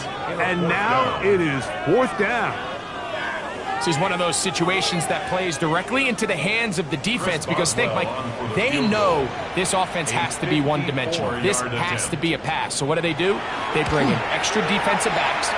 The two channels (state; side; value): identical; both; correlation 1.00